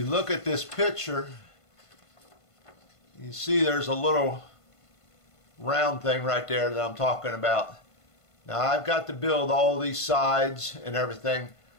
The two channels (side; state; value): right; late; 1.5 ms